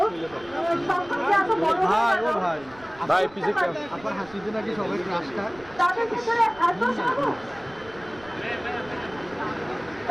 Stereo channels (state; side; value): noise; right; rumble, 24 dB below the sound